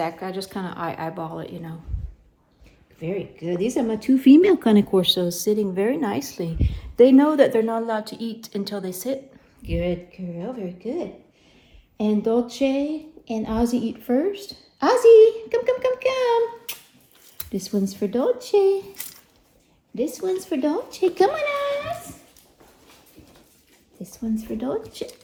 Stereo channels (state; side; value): identical; both; correlation 1.00